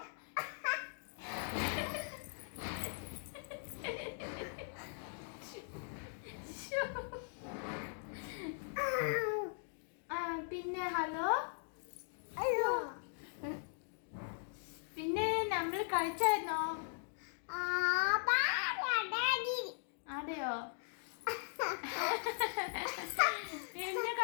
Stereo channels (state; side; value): silent; right; digital silence